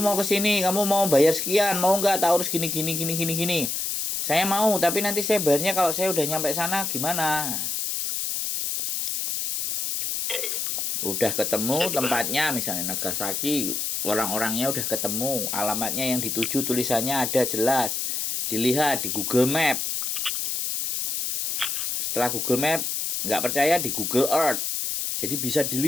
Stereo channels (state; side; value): noise; left; hiss, 1 dB below the sound